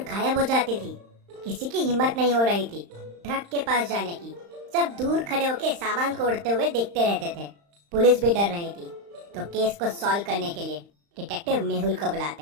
गायब हो जाती थी। किसी की हिम्मत नहीं हो रही थी ट्रक के पास जाने की। सब दूर खड़े होकर सामान को उड़ते हुए देखते रहते थे। पुलिस भी डर रही थी, तो केस को सॉल्व करने के लिए डिटेक्टिव मेहुल को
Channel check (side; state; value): left; late; 35 ms